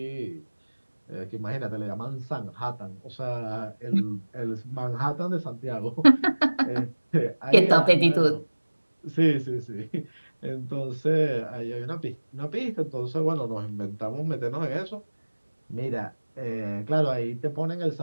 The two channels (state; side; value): inverted; both; correlation -1.00